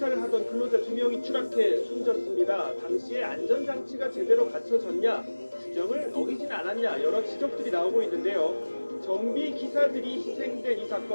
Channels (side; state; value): both; inverted; correlation -1.00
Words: 하던 근로자 2명이 추락해 숨졌습니다. 당시에 안전장치가 제대로 갖춰졌냐, 규정을 어기진 않았냐 여러 지적들이 나오고 있는데요. 정비 기사들이 희생된 이